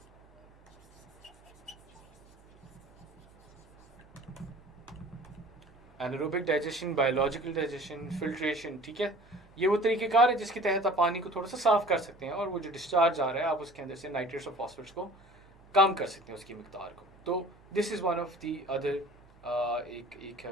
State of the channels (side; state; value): right; noise; hum, 26 dB below the sound